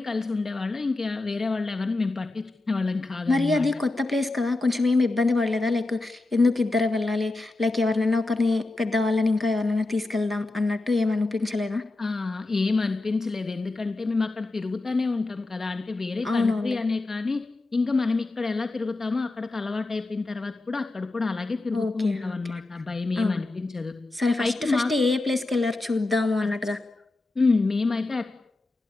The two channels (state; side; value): quieter; right; 3.0 dB